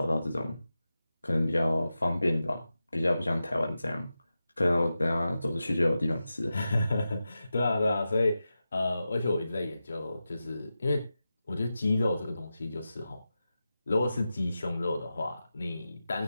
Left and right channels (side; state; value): both; inverted; correlation -0.92